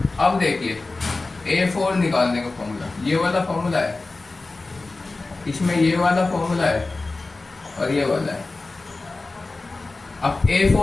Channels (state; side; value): quieter; right; 3.4 dB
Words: अब देखिए A4 निकालने का फॉर्मूला, ये वाला फॉर्मूला है, इसमें ये वाला फॉर्मूला है और ये वाला है। अब